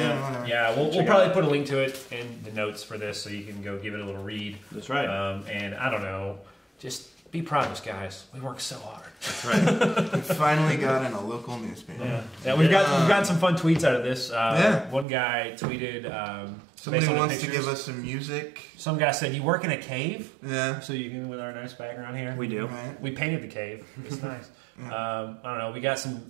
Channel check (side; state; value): left; drops out; at 15.1 s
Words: Yeah, we'll probably put a link to it in the notes for this, so you can go give it a little read. That's right. And I don't know, just be proud of us, guys. We work so hard. That's right. We finally got in a local newspaper. Yeah, we've gotten some fun tweets out of this. Yeah. One guy tweeted. Somebody based on the wants to pictures, give us some music. Some guy said, "You work in a cave?" Yeah. So you can with our nice background here. We do. Right. We painted the cave. It's nice. I don't know. We got some